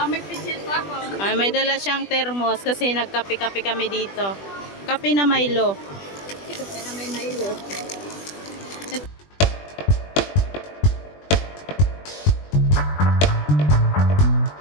May pichit pa ako. Ay, may dala siyang thermos kasi nagkape-kape kami dito. Kape na Milo. Ito pa na may Milo.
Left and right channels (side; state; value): right; late; 20 ms